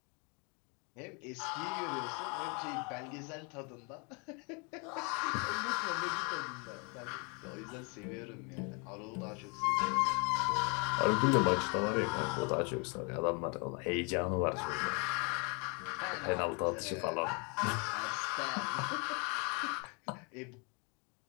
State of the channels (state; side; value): quieter; right; 33.6 dB